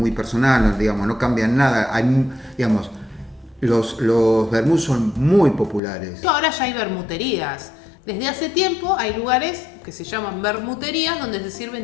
personal, digamos, no cambian nada, digamos, los vermouth son muy populares. Ahora ya hay vermuterías. Desde hace tiempo hay lugares que se llaman vermuterías donde se sirven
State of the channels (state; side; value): drops out; right; at 5.8 s